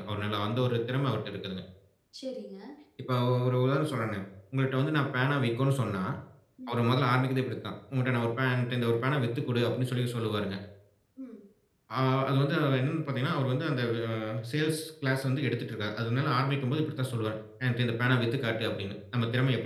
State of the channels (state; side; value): identical; both; correlation 1.00